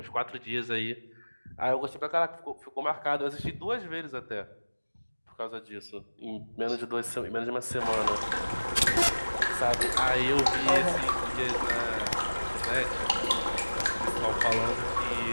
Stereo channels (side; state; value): both; inverted; correlation -1.00